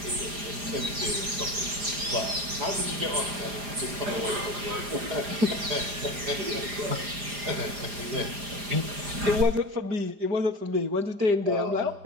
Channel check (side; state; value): left; late; 4.9 ms